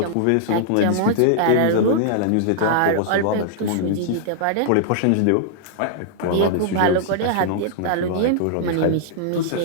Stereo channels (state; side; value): different; both; correlation -0.01